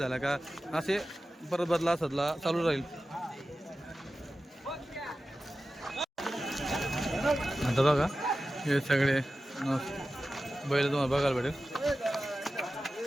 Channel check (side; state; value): both; normal; correlation 0.94